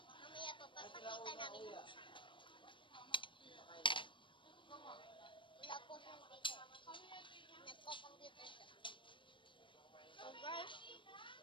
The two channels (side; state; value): right; late; 0.24 ms